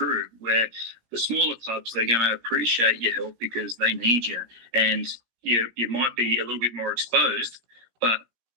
Where the smaller clubs, they're going to appreciate your help because they need you, and you might be a little bit more exposed, but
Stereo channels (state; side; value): late; left; 17 ms